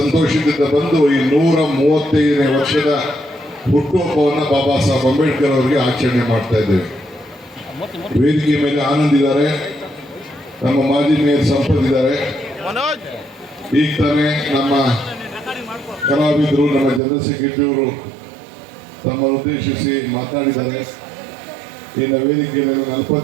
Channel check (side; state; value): left; drops out; at 17.0 s